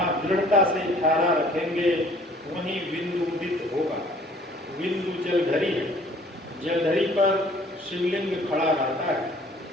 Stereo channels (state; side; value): normal; both; correlation 0.55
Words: दृढ़ता से ठहरा रखेंगे वहीं बिंदु उदित होगा। बिंदु जलधरी है, जलधरी पर शिवलिंग खड़ा रहता है।